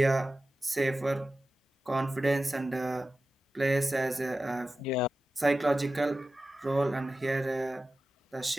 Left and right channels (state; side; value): normal; both; correlation 0.94